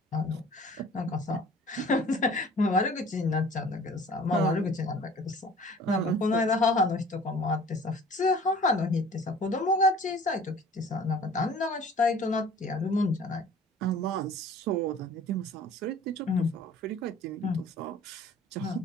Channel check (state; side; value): normal; both; correlation 0.49